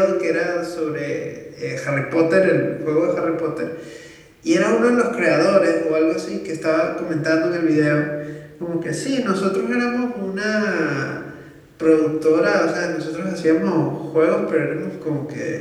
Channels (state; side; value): identical; both; correlation 1.00